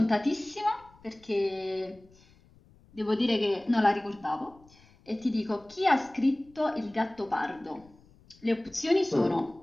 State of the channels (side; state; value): left; noise; rumble, 27 dB below the sound